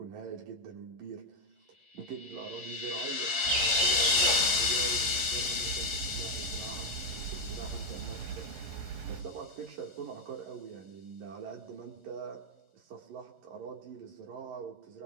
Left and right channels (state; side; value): late; left; 10 ms